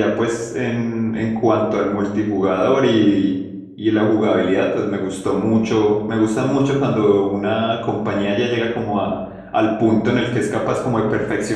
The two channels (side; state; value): both; identical; correlation 1.00